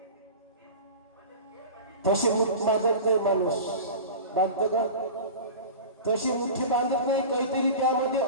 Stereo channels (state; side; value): inverted; both; correlation -0.33